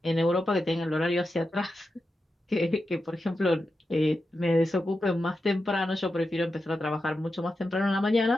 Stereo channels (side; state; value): both; normal; correlation 0.89